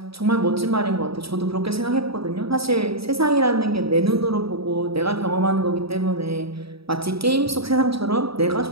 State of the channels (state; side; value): late; left; 0.76 ms